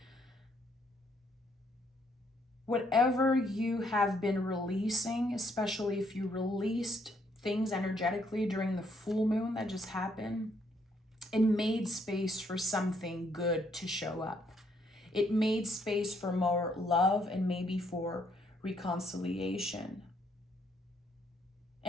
whatever you have been releasing, especially if you released things energetically during the full moon that just happened, it made space for something good to show up. It made space for more love and maybe for reconciliation.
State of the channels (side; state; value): both; normal; correlation 0.70